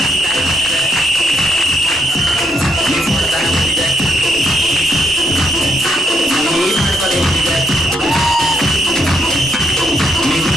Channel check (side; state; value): both; normal; correlation 0.75